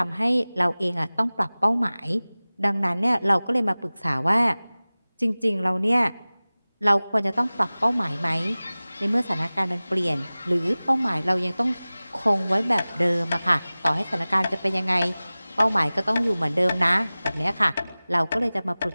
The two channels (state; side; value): inverted; both; correlation -0.99